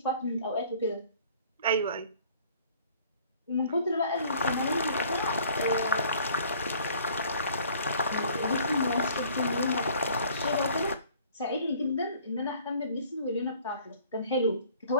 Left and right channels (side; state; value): both; inverted; correlation -0.54